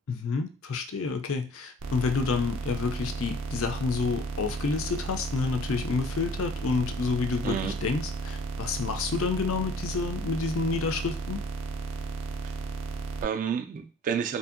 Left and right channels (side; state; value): both; normal; correlation 0.53